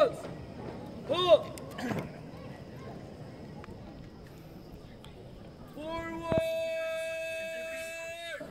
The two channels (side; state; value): both; identical; correlation 1.00